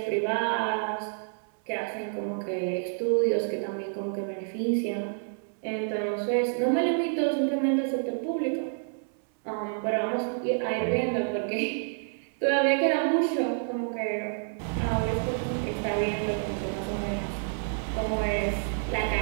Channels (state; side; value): silent; left; 59 dB below the other